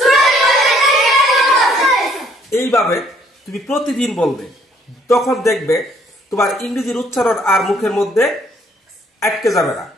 এইভাবে তুমি প্রতিদিন বলবে, তখন দেখবে তোমার ইংরেজির উচ্চারণ আর মুখের মধ্যে আটকে যাবে না।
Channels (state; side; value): normal; both; correlation 0.64